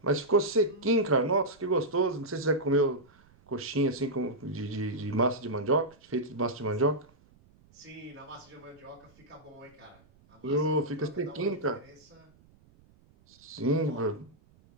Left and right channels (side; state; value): right; noise; rumble, 29 dB below the sound